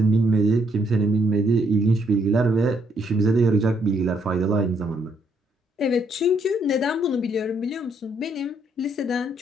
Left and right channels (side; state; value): both; normal; correlation 0.71